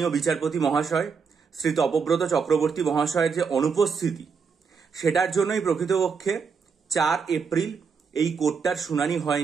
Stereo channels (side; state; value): left; quieter; 5.7 dB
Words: বিচারপতি মহাশয় শ্রী তপব্রত চক্রবর্তী মহাশয়ের যে অনুপস্থিতি সেটার জন্যই প্রকৃতপক্ষে 4 এপ্রিল এই কোর্টটার শুনানি